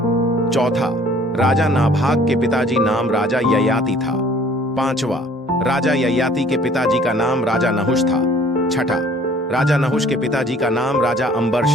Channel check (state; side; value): normal; both; correlation 0.55